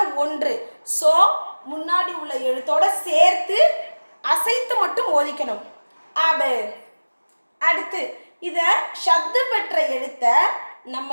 1. ஸோ முன்னாடி உள்ள எழுத்தோட சேர்த்து அசைத்து மட்டும் ஓதிக்கணும். அபு. அடுத்து இத ஷத்து பெற்ற எழுத்த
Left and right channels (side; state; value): both; inverted; correlation -1.00